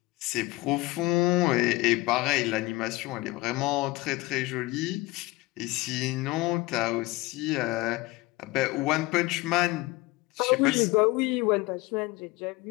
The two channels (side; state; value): right; quieter; 20.6 dB